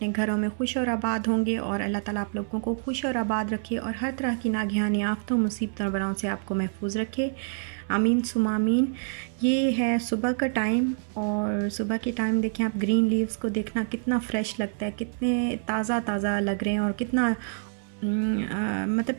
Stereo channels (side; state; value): left; silent; 60 dB below the other